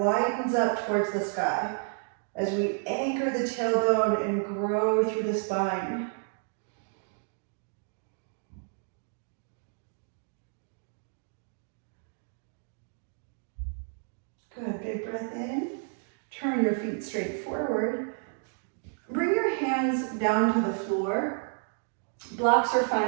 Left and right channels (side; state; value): left; silent; 57 dB below the other